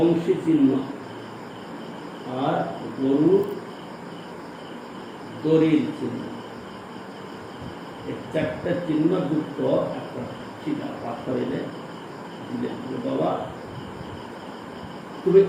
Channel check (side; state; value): both; identical; correlation 1.00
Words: চিহ্ন, আর গরু দড়ির চিহ্ন, এই চারটা চিহ্ন যুক্ত একটা শিলা পাথর এনে দিলেন। বাবা তুমি